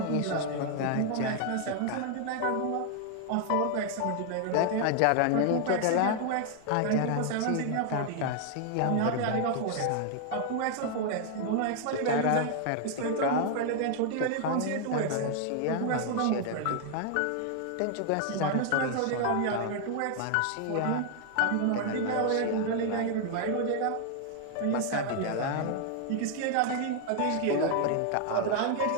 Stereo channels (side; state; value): both; different; correlation 0.00